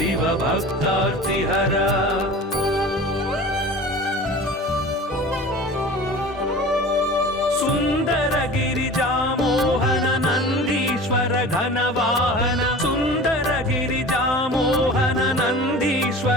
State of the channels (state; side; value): normal; both; correlation 0.38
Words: भक्तार्तिहरा सुंदर गिरिजा मोहन नंदीश्वर घनवाहन सुंदर गिरिजा मोहन